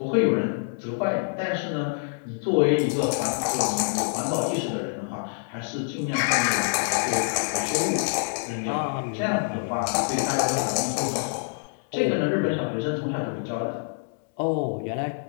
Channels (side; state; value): right; silent; 61 dB below the other